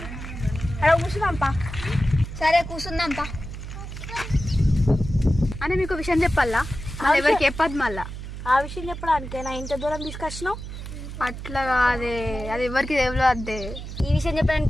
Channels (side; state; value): right; noise; hum, 9 dB below the sound